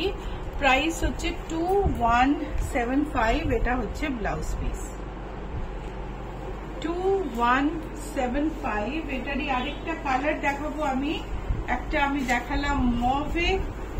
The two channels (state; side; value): identical; both; correlation 1.00